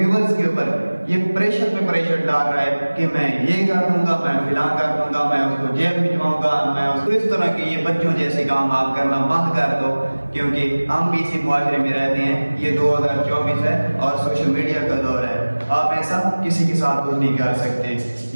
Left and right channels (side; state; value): both; inverted; correlation -1.00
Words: کے اوپر یہ پریشر پہ پریشر ڈال رہا ہے کہ میں یہ کر دوں گا، میں فلاں کر دوں گا، میں اس کو جیل بھجواؤں گا، میں اس کو اس طرح کے یہ بچوں جیسے کام آپ کرنا بند کر دو، کیونکہ ہم بھی اسی معاشرے میں رہتے ہیں۔ یہ 2024 ہے اور سوشل میڈیا کا دور ہے، آپ ایسا کسی کے ساتھ کچھ نہیں کر سکتے۔